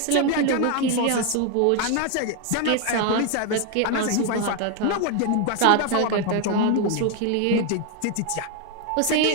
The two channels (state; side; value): different; both; correlation 0.01